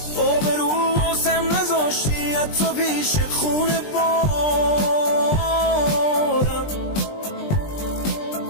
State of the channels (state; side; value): late; right; 20 ms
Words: آبرو واسم نذاشتی حتی پیش خونه بارم،